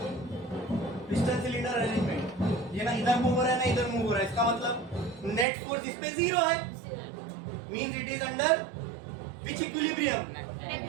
पिस्टन सिलेंडर अरेंजमेंट, ये ना इधर मूव हो रहा है ना इधर मूव हो रहा है, इसका मतलब नेट फोर्स इस पे 0 है, means it is under which equilibrium?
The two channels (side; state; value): left; drops out; at 5.5 s